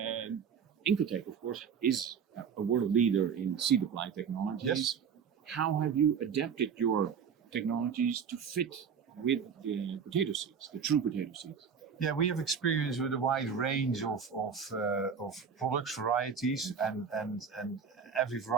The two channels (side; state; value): left; quieter; 6.7 dB